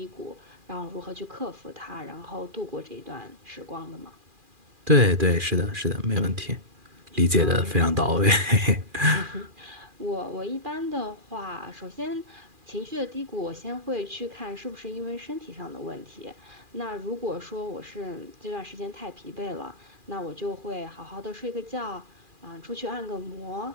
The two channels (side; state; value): left; late; 2.4 ms